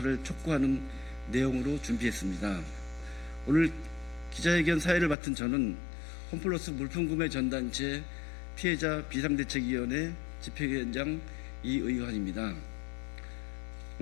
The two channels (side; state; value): right; drops out; at 5.2 s